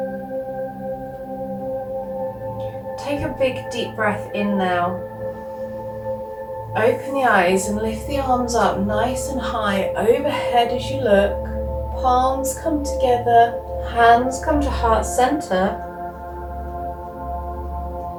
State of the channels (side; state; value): both; identical; correlation 1.00